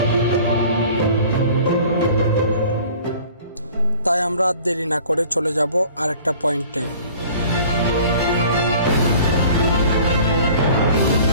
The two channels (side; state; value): both; inverted; correlation -0.48